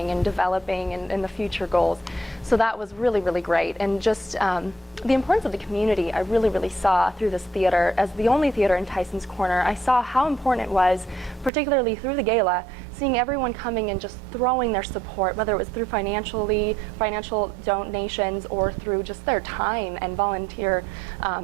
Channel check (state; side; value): drops out; left; at 11.5 s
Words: and developing and the future goals. So that was really, really great. And just the importance of the community I really, really saw through this theater. As the only theater in Tyson's Corner, I saw how important it was, particularly through the gala, seeing everyone coming and just throwing their support, whether it was through financial donations or through just their time and volunteer